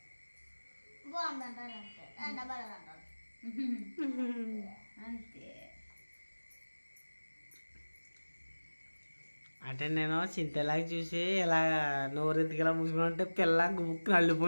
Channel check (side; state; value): both; inverted; correlation -1.00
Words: బాగుందంటారు అంతే. అంటే నేను చింతలాగా చూసి ఇలా నోరెందుకు ఇలా మూసుకుని ఉంటే పిల్ల బుక్